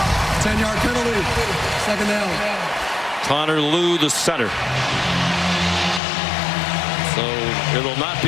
10-yard penalty. 2nd down. Connor Lew, the center. So it will not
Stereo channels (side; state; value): right; drops out; at 6.0 s